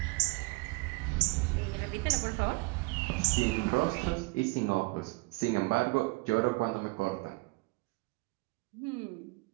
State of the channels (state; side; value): quieter; left; 25.3 dB